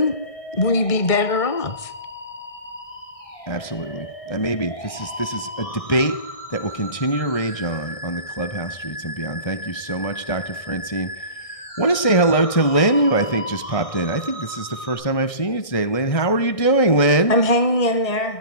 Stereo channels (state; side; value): late; right; 1.6 ms